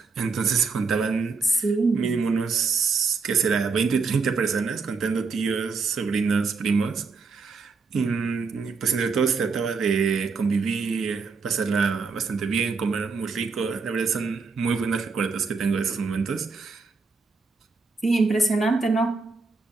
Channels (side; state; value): left; quieter; 4.6 dB